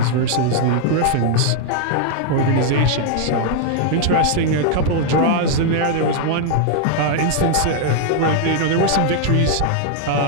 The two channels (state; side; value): different; both; correlation 0.00